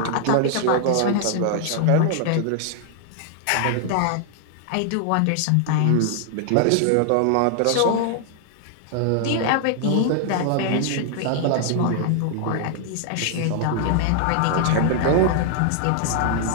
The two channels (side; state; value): both; different; correlation 0.00